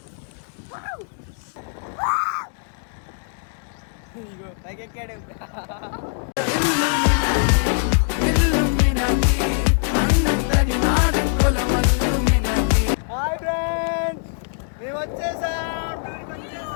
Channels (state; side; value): silent; right; digital silence